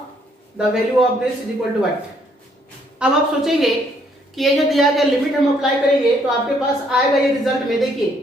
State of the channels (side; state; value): both; normal; correlation 0.67